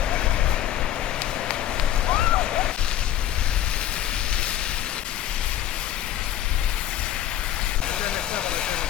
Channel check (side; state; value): right; quieter; 11.8 dB